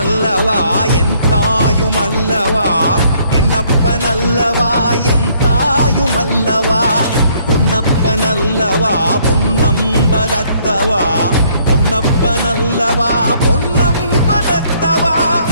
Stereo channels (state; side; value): inverted; both; correlation -0.65